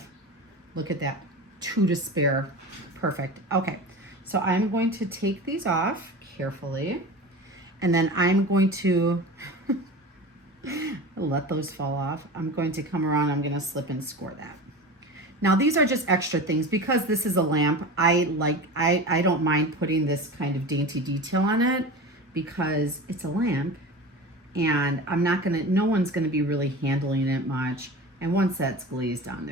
look at that, 2 to spare. Perfect. Okay, so I'm going to take these off carefully, and then I'm going to let those fall off. I'm going to come around, I'm going to slip and score that. Now these are just extra things because this is a lamp. I don't mind putting this kind of dainty detail on it because it's a lamp, and no one's gonna be really handling it much. And once that's glazed on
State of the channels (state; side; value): normal; both; correlation 0.31